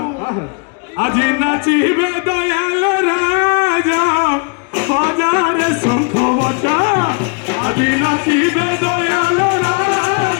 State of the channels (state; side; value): quieter; right; 35.5 dB